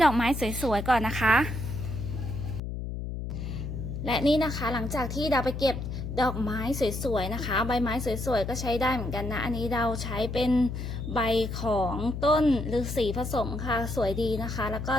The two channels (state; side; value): noise; left; hum, 5 dB below the sound